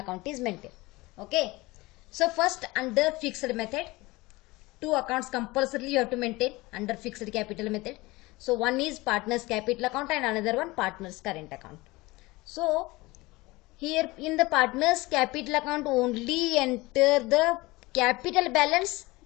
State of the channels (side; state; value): right; quieter; 21.6 dB